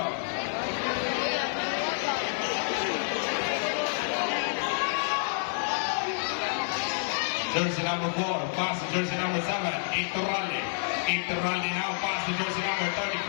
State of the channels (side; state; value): right; silent; digital silence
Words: Jersey number 4, pass to jersey number 7, Iturralde. Iturralde now, pass to jersey number 34.